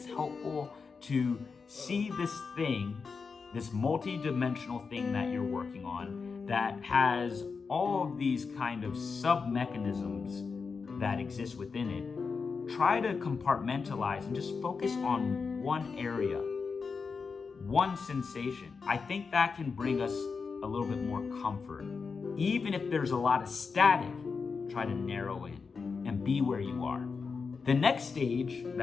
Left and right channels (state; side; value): quieter; right; 5.1 dB